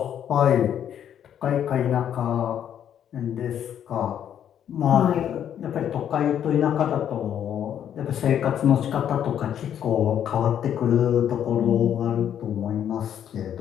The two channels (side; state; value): right; quieter; 9.6 dB